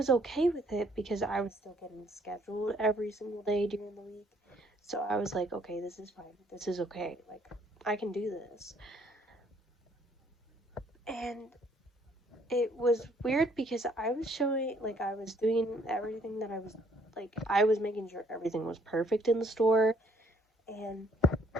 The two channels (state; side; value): normal; both; correlation 0.64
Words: okay with it because I was still getting scheduled every single day during the week. So I was like, okay, this is fine. This is okay. Like, I can do this. And it was weird because I was showing, like, I was doing everything that I was making sure everything was perfect in the store. And